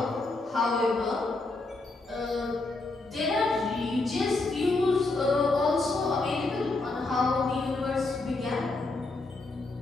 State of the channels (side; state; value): right; quieter; 3.3 dB